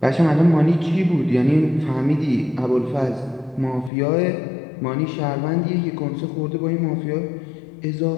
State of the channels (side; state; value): right; drops out; at 3.9 s